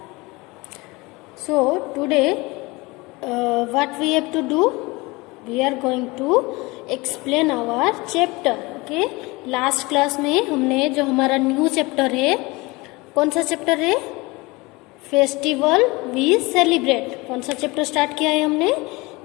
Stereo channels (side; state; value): right; quieter; 23.8 dB